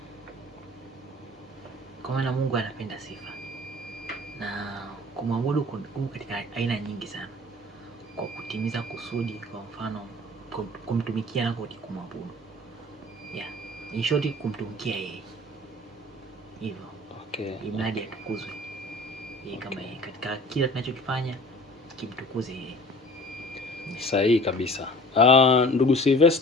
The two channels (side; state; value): both; normal; correlation 0.46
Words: Kwa maana Mungu anapenda sifa. Na kumwabudu kuna katika aina nyingi sana. Kwa kutimiza kusudi, kwa mfano kumtumikia na kumwabudu. In short, kumtumikia yeye. Hivyo. Okay. Imradi atukuzwe. Yeye kama yeye katika kila tunachokifanya kimtukuze yeye. Sahihi kabisa. Ndugu